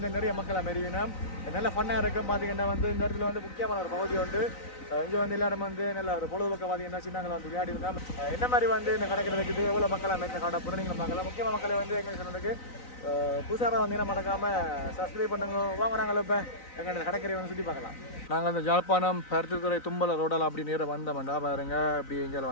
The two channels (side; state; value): right; late; 3.9 ms